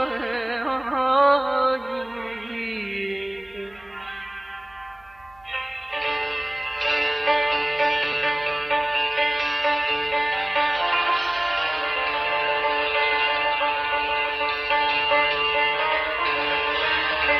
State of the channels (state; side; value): noise; right; hum, 29 dB below the sound